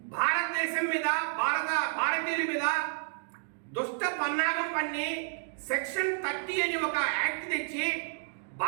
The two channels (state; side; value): silent; left; digital silence